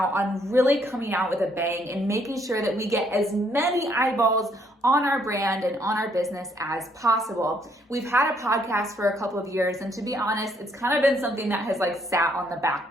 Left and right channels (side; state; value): both; normal; correlation 0.69